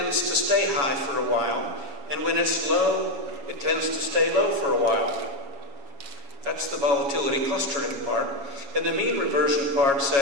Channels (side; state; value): left; late; 7.2 ms